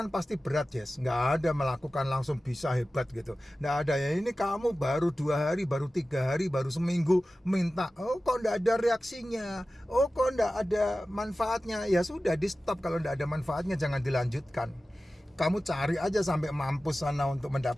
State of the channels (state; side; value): normal; both; correlation 0.95